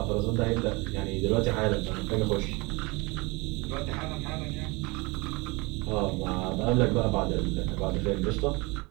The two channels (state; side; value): quieter; left; 25.7 dB